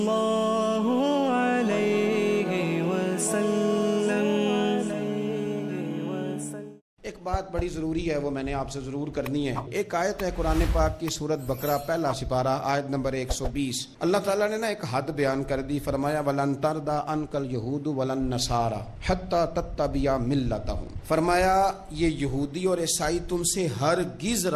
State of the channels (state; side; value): identical; both; correlation 1.00